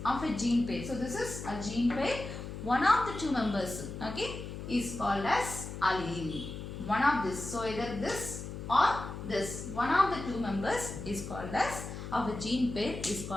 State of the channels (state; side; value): noise; left; hum, 8 dB below the sound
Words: of a gene pair. So this is a gene pair. One of the two members, okay, is called as allele. One of this, so either this or this, one of the two members is called as, of a gene pair is